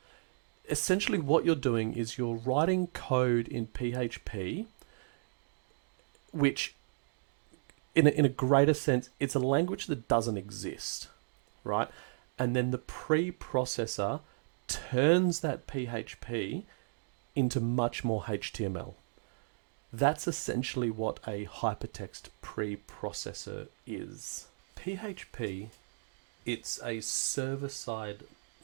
essentially what you're doing is you're writing code in PHP, which in a greater sense, it's a language that doesn't exist, right? And then the preprocessor turns that PHP into much more HTML. That's essentially what a hypertext preprocessor is. PHP, it's a server-side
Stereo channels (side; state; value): left; silent; digital silence